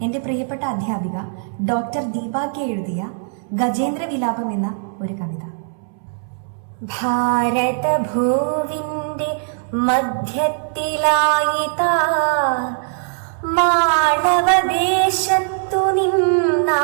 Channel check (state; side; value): silent; left; 66 dB below the other